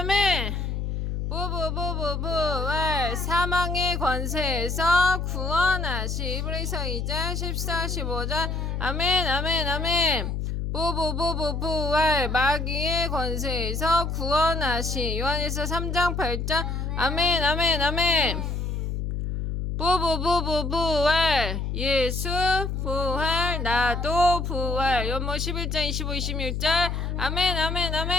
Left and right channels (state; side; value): noise; left; hum, 2 dB below the sound